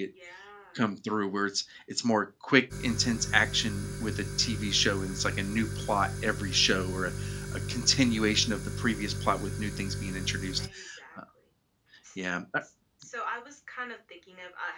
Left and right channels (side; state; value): both; identical; correlation 1.00